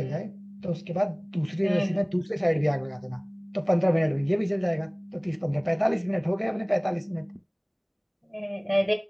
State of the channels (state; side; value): identical; both; correlation 1.00